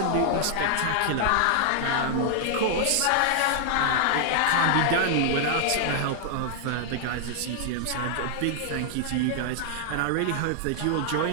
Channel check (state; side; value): different; both; correlation 0.00